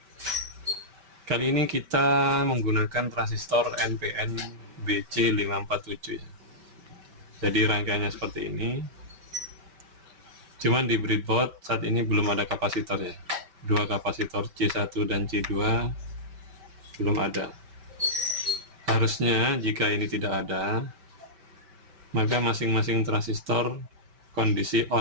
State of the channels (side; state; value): left; late; 5.2 ms